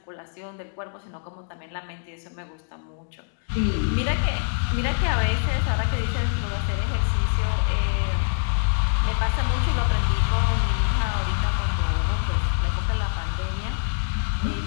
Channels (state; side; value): silent; right; digital silence